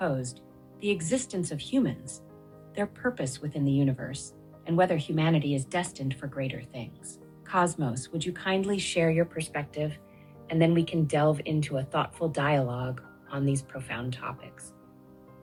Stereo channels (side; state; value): both; identical; correlation 1.00